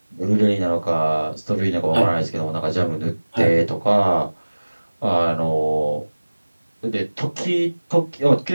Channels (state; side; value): inverted; both; correlation -1.00